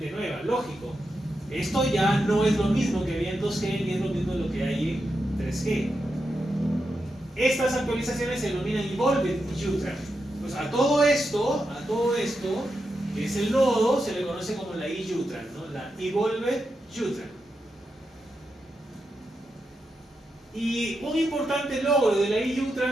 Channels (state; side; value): normal; both; correlation 0.87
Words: nueva, lógico. Esto ya no es lo mismo que había en 2G, ni es lo mismo lo que hay en 3G. Estas actualizaciones se denominan Evolved UTRAN. Pues a todo esto, que es el nodo, se le conoce como la IUTRAN, ¿no? La Evolved UTRAN. Y un importante logro de la